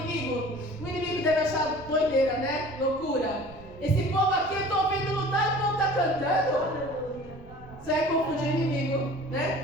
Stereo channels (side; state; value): right; noise; rumble, 20 dB below the sound